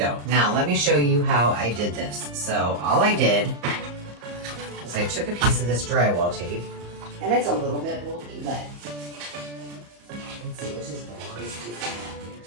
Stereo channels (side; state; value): left; late; 34 ms